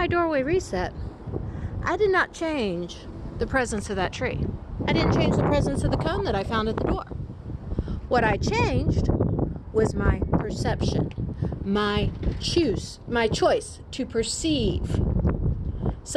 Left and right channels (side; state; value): both; identical; correlation 1.00